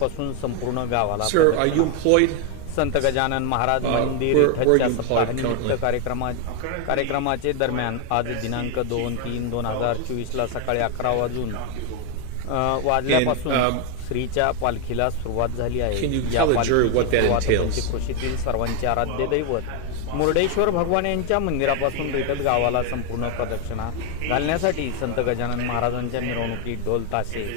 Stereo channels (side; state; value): both; different; correlation 0.01